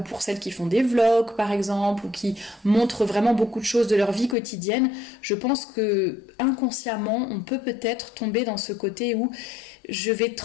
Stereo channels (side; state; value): right; drops out; at 4.4 s